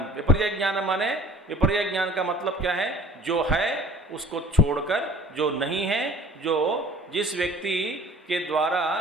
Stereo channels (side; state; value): both; normal; correlation 0.48